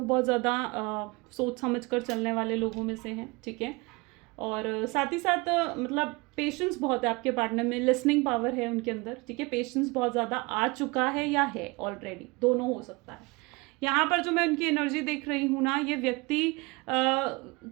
ज़्यादा सोच समझ कर चलने वाले लोगों में से हैं, ठीक है। और साथ ही साथ मतलब पेशेंस बहुत है आपके पार्टनर में, लिसनिंग पावर है उनके अंदर, ठीक है। पेशेंस बहुत ज़्यादा आ चुका है या है ऑलरेडी, दोनों हो सकता है। यहाँ पर जो मैं उनकी एनर्जी देख रही हूँ ना, ये व्यक्ति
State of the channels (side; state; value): left; quieter; 25.7 dB